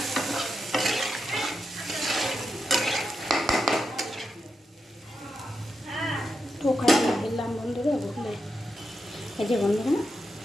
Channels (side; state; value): both; normal; correlation 0.86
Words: তো ওখানে দিলাম বন্ধুরা, বুঝলে এই যে বন্ধুরা